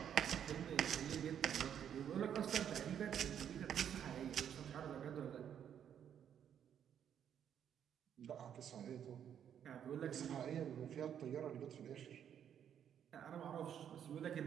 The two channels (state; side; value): quieter; left; 9.1 dB